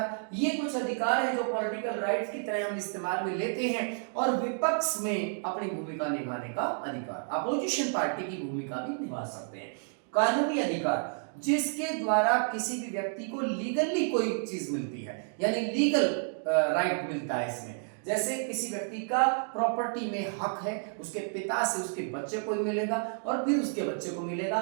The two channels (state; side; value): silent; left; 56 dB below the other